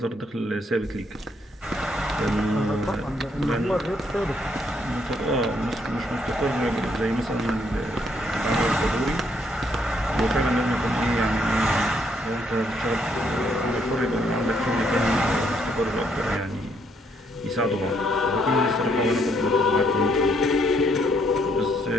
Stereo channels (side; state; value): both; normal; correlation 0.71